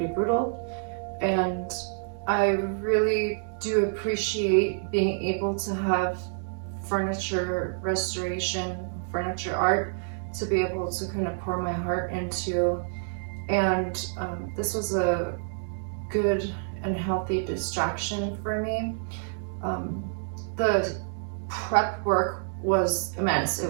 brutal, and I really do appreciate being able to have furniture restoration, furniture art, to be able to kind of pour my heart into. And this was a good and healthy distraction for me. The prep work was immense.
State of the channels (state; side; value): silent; left; digital silence